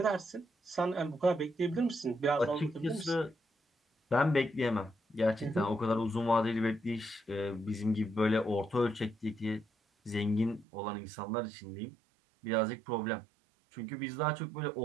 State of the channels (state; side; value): drops out; left; at 10.7 s